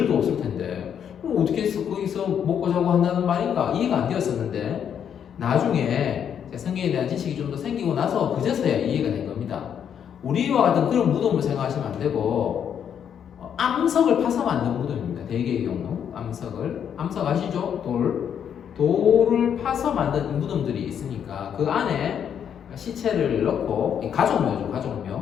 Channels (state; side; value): quieter; right; 8.5 dB